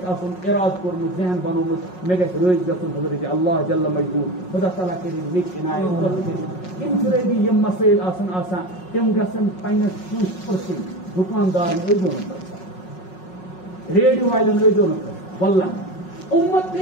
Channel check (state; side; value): late; right; 5.5 ms